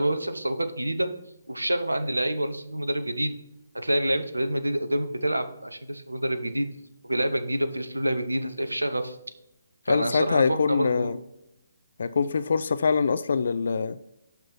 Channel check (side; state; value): both; inverted; correlation -0.91